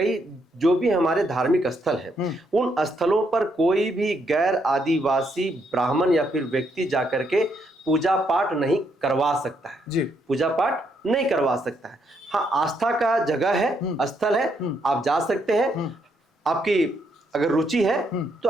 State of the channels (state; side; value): normal; both; correlation 0.75